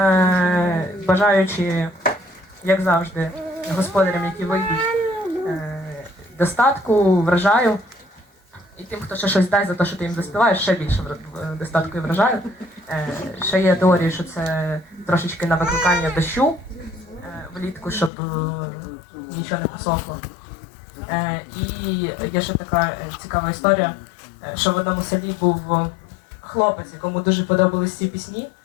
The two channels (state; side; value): drops out; right; at 18.1 s